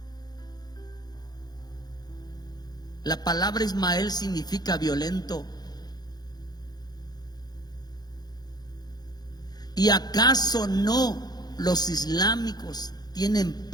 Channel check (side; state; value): right; late; 0.19 ms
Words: La palabra Ismael significa violento. ¿Y acaso no los islámicos tienen